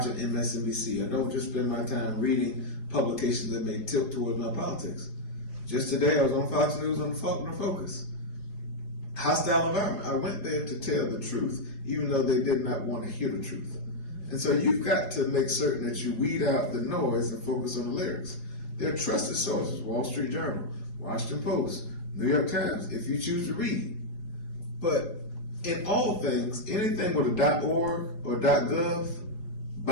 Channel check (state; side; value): late; right; 4.3 ms